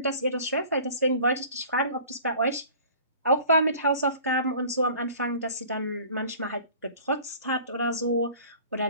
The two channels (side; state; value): both; inverted; correlation -0.47